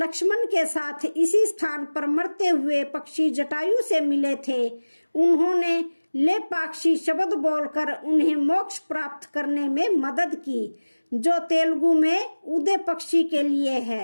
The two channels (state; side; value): inverted; both; correlation -1.00